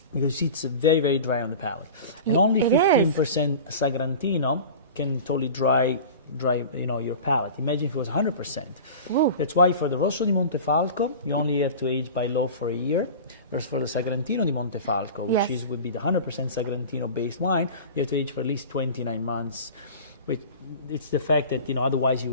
you see it's very, very dry on the palate. And only it is. 15% Sagrantino can totally dry your palate. Imagine if it was 100%. Ooh. That's why for the Rosso di Montefalco, you only have to age by law for a year. Whereas for the Sagrantino di Montefalco, which Yes. would be the 100% Sagrantino-based wine, you have to age for at least 29 months. Which it's the fact that otherwise you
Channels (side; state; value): both; inverted; correlation -0.35